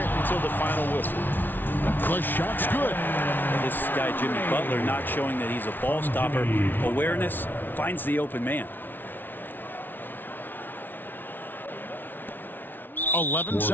until the final whistle. The shot's good. This guy, Jimmy Butler, not showing that he's a ball stopper. Awareness finds the open man. 11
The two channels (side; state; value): right; late; 0.091 ms